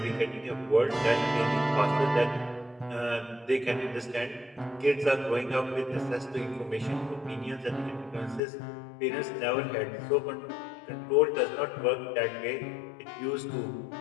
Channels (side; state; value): right; drops out; at 8.4 s